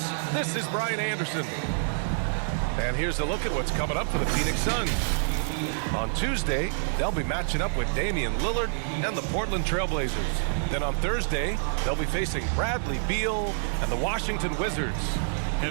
This is Brian Anderson. And here's a look at what's coming up for the Phoenix Suns. On Tuesday, they'll be matching up with Damian Lillard and the Portland Trailblazers. Then on Thursday, they'll be facing Bradley Beal and the Washington Wizards.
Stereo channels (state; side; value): silent; left; digital silence